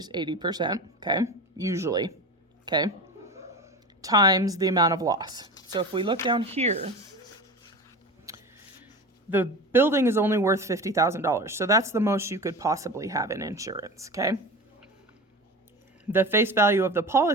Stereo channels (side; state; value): both; normal; correlation 0.30